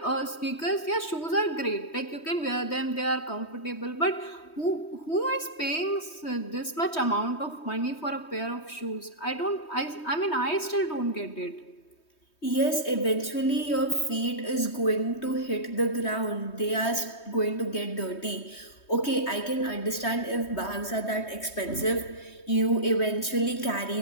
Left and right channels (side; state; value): right; late; 3.2 ms